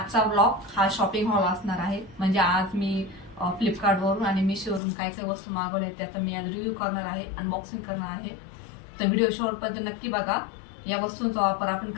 vlog हा shopping hall असणार आहे. म्हणजे आज मी फ्लिपकार्टवरून आणि मिशोवरून काय काय वस्तू मागवल्या त्याचा मी आज रिव्ह्यू करणार आहे, अनबॉक्सिंग करणार आहे. तर व्हिडिओ शेवटपर्यंत नक्की बघा. या वस्तूंचा वापर आपण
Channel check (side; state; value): right; drops out; at 4.8 s